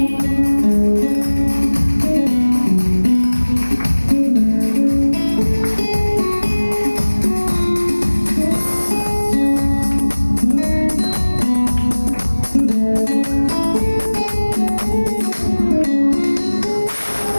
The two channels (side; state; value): both; inverted; correlation -1.00